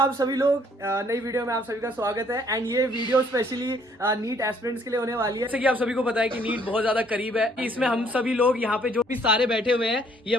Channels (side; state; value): both; normal; correlation 0.63